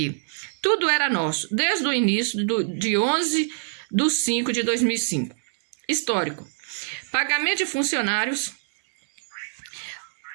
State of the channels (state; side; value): silent; left; digital silence